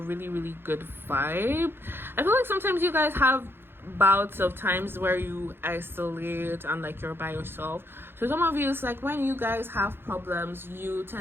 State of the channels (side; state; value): left; late; 0.11 ms